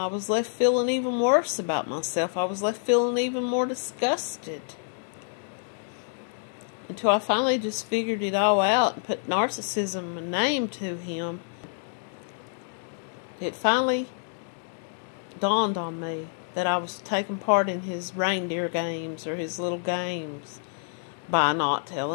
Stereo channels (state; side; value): silent; right; digital silence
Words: was left feeling even worse about myself. I was left feeling even more disgusted. Until I finally just figured it all out and put narcissism a name to him. It finally dawned on me that I was taking part in his reindeer games or his little games. by not